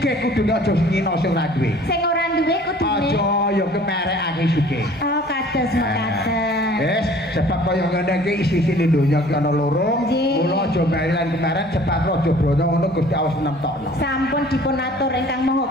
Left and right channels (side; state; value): both; normal; correlation 0.51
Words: kudune aja ngino sing ora duwe. Sing ora duwe kudune. Aja ya kemerekake sugih. Oh, kados mekaten. Wis, sebab kaya ngene iki isi-isine donya iki ana loro. Nggih. Mula aja merilan kemaren cepat aja brono ngono Gusti Allah nemtokno. Sampun dipun atur ingkang Maha